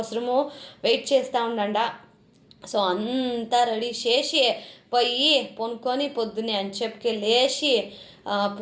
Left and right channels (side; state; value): both; identical; correlation 1.00